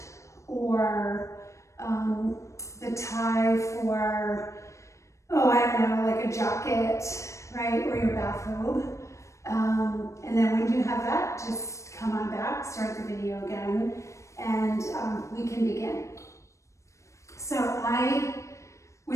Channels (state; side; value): late; right; 0.15 ms